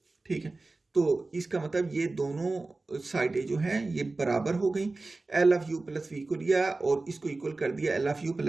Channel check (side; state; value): left; quieter; 3.4 dB